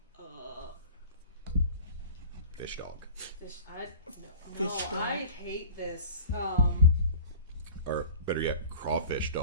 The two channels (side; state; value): both; inverted; correlation -0.40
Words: Fish dog. No, Fish dog. I hate this. Or better yet, crawfish